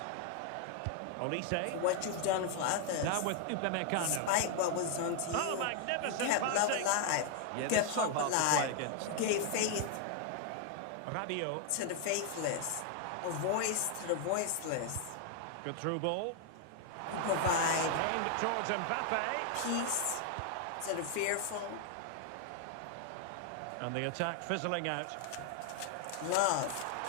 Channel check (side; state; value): both; different; correlation 0.00